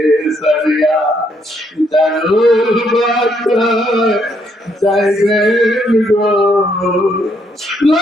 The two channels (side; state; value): both; normal; correlation 0.72